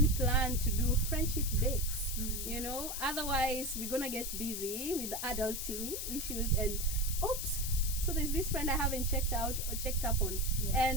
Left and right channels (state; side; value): noise; left; hiss, 4 dB below the sound